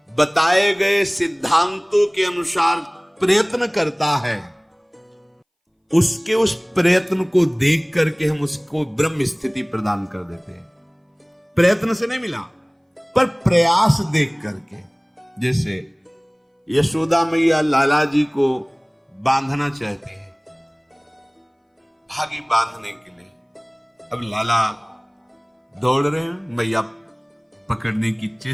बताए गए सिद्धांतों के अनुसार प्रयत्न करता है, उसके उस प्रयत्न को देख करके हम उसको ब्रह्म स्थिति प्रदान कर देते हैं। प्रयत्न से नहीं मिला, पर प्रयास देख करके। जैसे यशोदा मैया लाला जी को बांधना चाहती है, भागी बांधने के लिए। अब लाला दौड़ रहे हैं, मैया पकड़ने की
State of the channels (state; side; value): identical; both; correlation 1.00